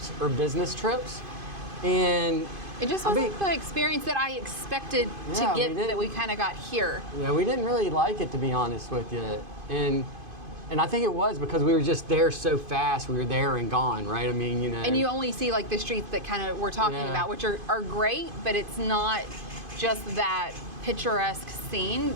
or business trips. And it just wasn't the experience that I expected to get that we kind of got here. Yeah, we didn't really like it, to be honest with you. And I think it was because we were just there so fast. We were there and gone, right? I mean, you know. And you only see like the streets that kind of we're talking about, which are great, but it's not just that picturesque scene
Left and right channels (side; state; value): left; late; 2.5 ms